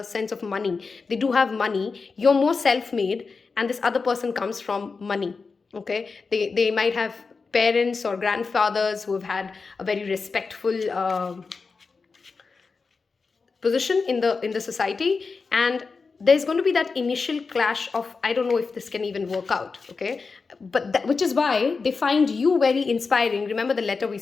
sense of money. They do have money. You're more self-made, and this other person comes from money. Okay, they might have parents or grandfathers who have had a very respectful position in the society, and there's going to be that initial clash of, I don't know if this can even work out, okay? But which is why they find you very inspiring. Remember the letter we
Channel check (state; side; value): quieter; right; 4.6 dB